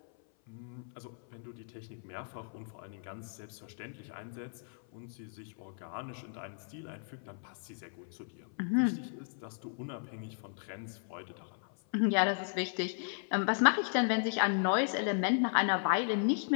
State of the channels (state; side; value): silent; right; 54 dB below the other